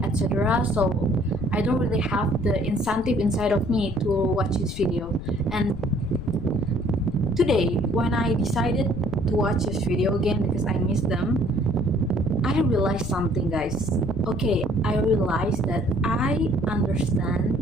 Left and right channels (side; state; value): left; noise; rumble, 10 dB below the sound